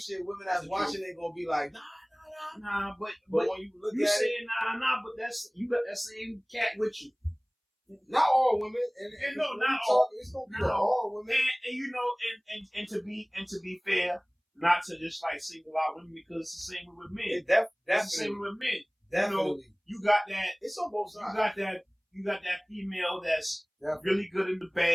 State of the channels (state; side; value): identical; both; correlation 1.00